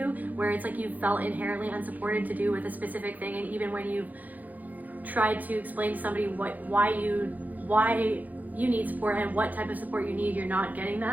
where it's like you felt inherently unsupported to do with a specific thing. And even when you've tried to explain to somebody why you need support and what type of support you need, you're not getting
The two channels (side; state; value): left; late; 0.081 ms